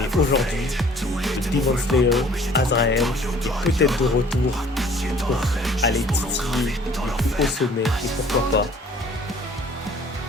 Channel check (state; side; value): normal; both; correlation 0.54